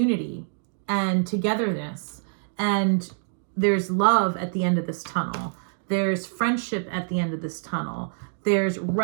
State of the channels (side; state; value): left; silent; digital silence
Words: and togetherness. And there's love at the end of this tunnel. There's friendship at the end of this tunnel. There's